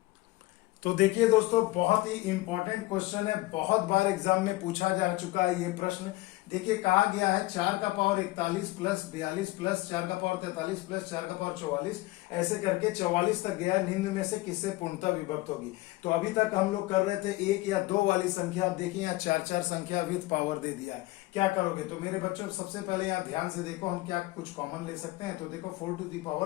तो देखिए दोस्तों, बहुत ही इंपॉर्टेंट क्वेश्चन है, बहुत बार एग्जाम में पूछा जा चुका है ये प्रश्न। देखिए कहा गया है 4 का पावर 41 प्लस 42 प्लस 4 का पावर 43 प्लस 4 का पावर 44, ऐसे करके 44 तक गया, निम्न में से किससे पूर्णतः विभक्त होगी। तो अभी तक हम लोग कर रहे थे 1 या 2 वाली संख्या, देखिए यहाँ 4 संख्या विथ पावर दे दिया है, क्या करोगे। तो मेरे बच्चों सबसे पहले यहाँ ध्यान से देखो, हम क्या कुछ कॉमन ले सकते हैं। तो देखो 4 टू दी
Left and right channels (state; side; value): quieter; right; 19.5 dB